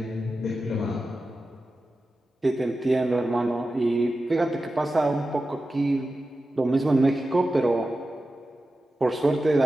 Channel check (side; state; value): both; normal; correlation 0.93